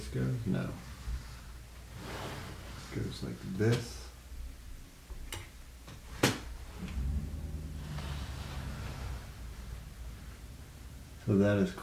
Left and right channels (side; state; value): both; identical; correlation 1.00